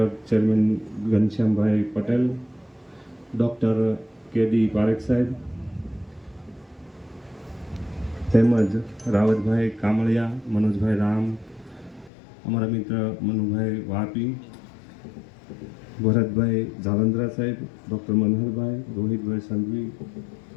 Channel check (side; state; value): right; drops out; at 12.1 s